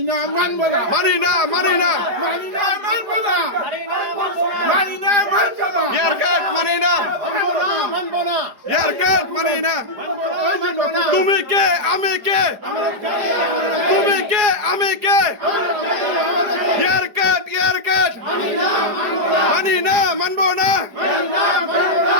না, মানবো না, মানি না, মানবো না, ইয়ার কাজ মানি না, মানবো না, ইয়ার কাজ মানি না। তুমি কে, আমি কে, তুমি কে, আমি কে, ইয়ার কাজ মানি না, মানবো না।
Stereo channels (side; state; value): left; late; 4.9 ms